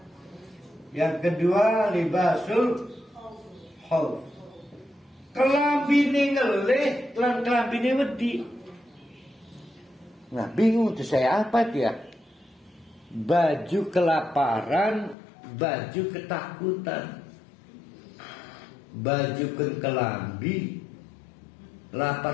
Yang kedua, libasul khauf. Kelambine ngeleh, kelambine wedi. Nah, bingung tuh saya apa dia? Baju kelaparan, baju ketakutan. Baju kelambi,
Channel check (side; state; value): right; drops out; at 15.2 s